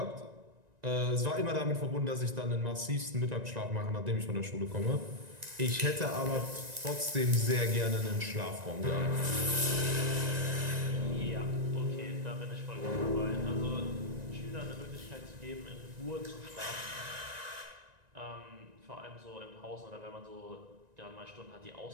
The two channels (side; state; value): left; late; 1.9 ms